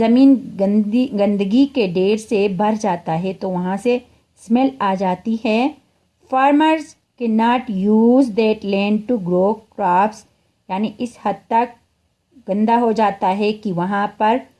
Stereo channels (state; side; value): identical; both; correlation 1.00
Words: گندگی کے ڈھیر سے بھر جاتا ہے تو وہاں سے اسمیل آ جاتی ہے۔ Farmers can not use that land to grow crops, یعنی اس حد تک گندا ہو جاتا ہے کہ وہاں پر